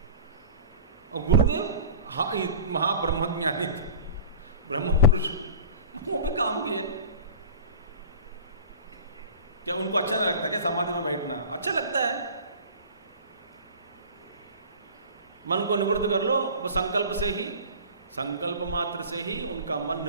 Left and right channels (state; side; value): inverted; both; correlation -0.38